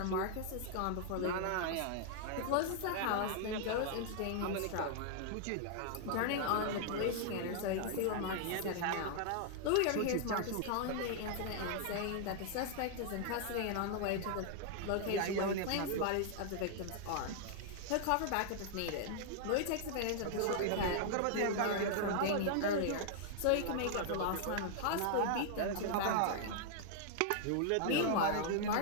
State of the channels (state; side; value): different; both; correlation -0.01